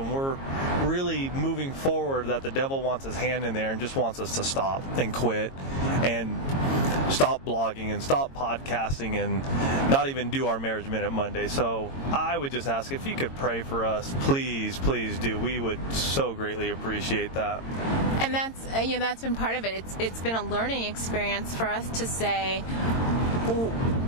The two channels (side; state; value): right; late; 22 ms